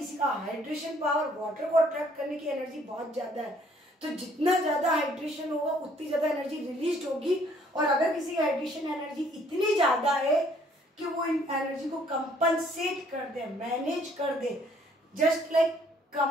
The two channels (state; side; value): normal; both; correlation 0.62